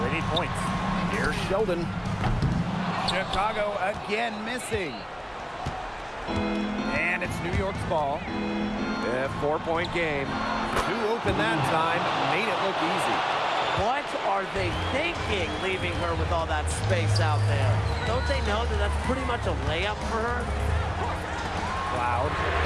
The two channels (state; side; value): identical; both; correlation 1.00